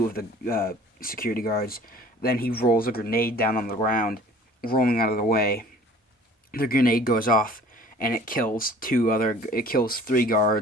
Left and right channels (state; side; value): normal; both; correlation 0.49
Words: of the security guards. Then he rolls a grenade down on the ground, rolling out of the way. The grenade goes off, and it kills three